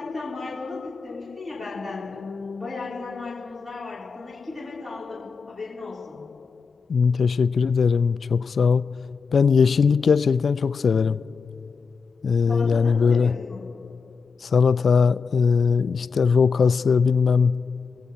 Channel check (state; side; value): quieter; right; 5.3 dB